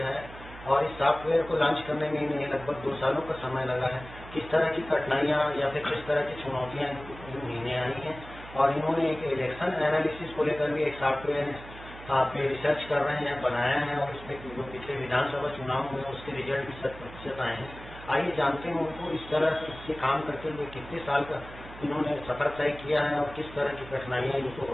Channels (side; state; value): right; noise; hum, 16 dB below the sound